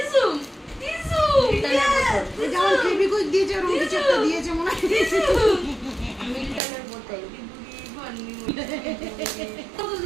যেমন ফেবিকুইক দিয়েছে ওরকম কিছু একটা দিয়েছে মনে হয়। মিল্টনের বোতল।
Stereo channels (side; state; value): left; drops out; at 6.6 s